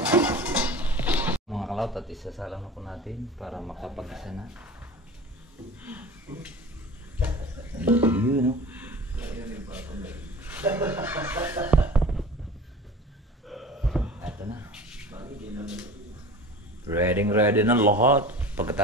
Mga kalawt at isasalang na po natin para makapag-isa na. Yun, no? Ito na. Ready na lahat.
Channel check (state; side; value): normal; both; correlation 0.38